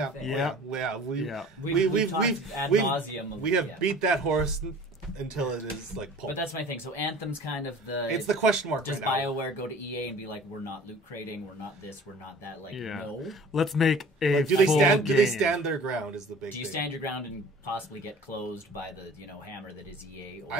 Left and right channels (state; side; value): normal; both; correlation 0.46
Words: thing. We've ad nauseum. We have beat that horse until it is like pulp. But that's my thing. So Anthem's kind of the... It's the question mark Does right now. BioWare go to EA and be like, we're not loot crating, we're not this, we're not that? Like, no. Let's make a do they stand their ground is the big thing. Do you stand your ground and possibly get closed by the hammer that is EA? Or...